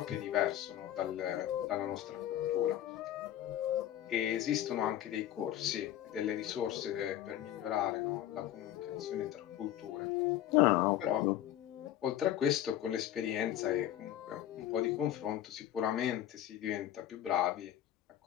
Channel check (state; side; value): quieter; right; 12.2 dB